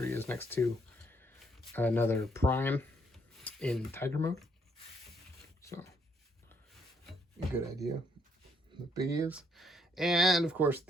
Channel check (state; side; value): normal; both; correlation 0.71